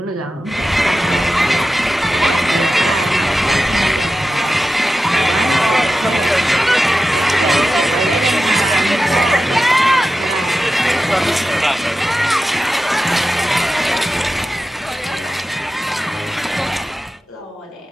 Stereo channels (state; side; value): normal; both; correlation 0.93